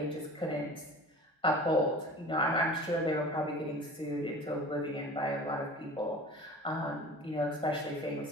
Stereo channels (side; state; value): both; normal; correlation 0.40